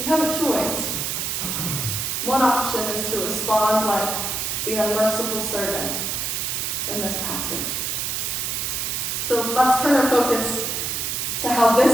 have a choice. One option is to respond like the unmerciful servant in this passage. So let's turn our focus to how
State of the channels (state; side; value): noise; right; hiss, 1 dB below the sound